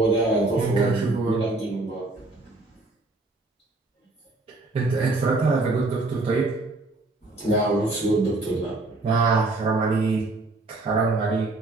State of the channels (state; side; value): quieter; left; 3.1 dB